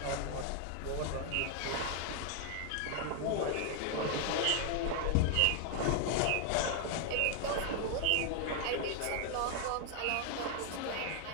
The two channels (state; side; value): different; both; correlation 0.00